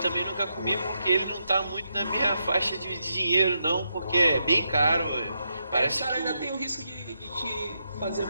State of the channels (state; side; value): inverted; both; correlation -0.82